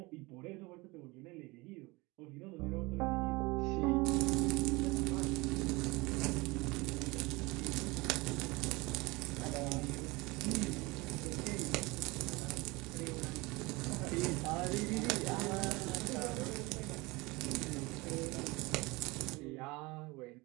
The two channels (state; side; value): quieter; left; 23.8 dB